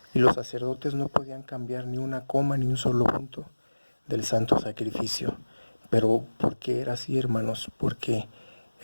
Y los sacerdotes no podían cambiar ni una coma ni un solo punto del santo sacrificio. Pero ¿por qué era así, hermanos? Porque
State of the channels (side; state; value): both; inverted; correlation -1.00